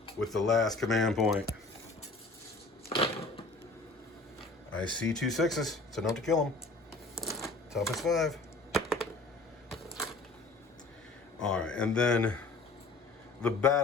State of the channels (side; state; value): right; quieter; 3.3 dB